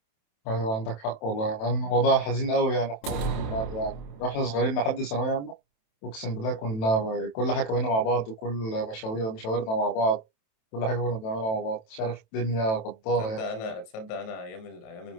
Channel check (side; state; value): right; late; 27 ms